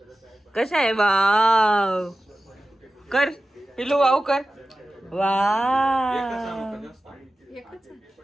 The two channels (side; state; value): both; normal; correlation 0.95